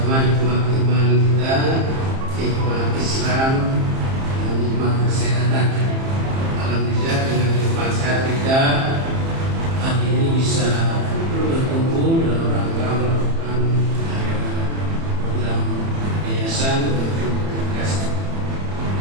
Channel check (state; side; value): late; left; 30 ms